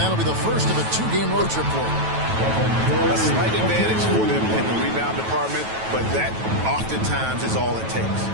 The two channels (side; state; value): left; late; 9.2 ms